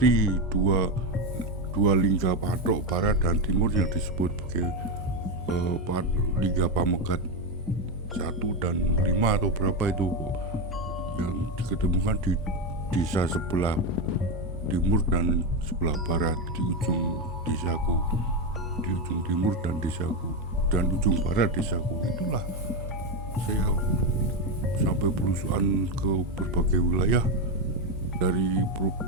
dua lingga patok barat dan timur yang disebut sebagai lingga Pamegat 1 dan 5 atau berapa itu, yang diketemukan di desa sebelah timur dan sebelah barat, di ujung desaku, di ujung timur dan desaku, dan ujung barat desaku. Itulah saya sampai belusuan ke berbagai wilayah, dari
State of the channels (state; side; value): normal; both; correlation 0.10